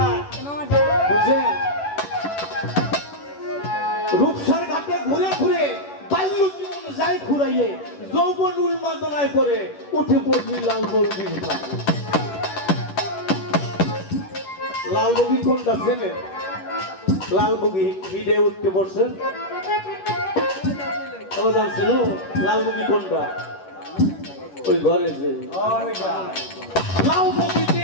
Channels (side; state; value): right; late; 11 ms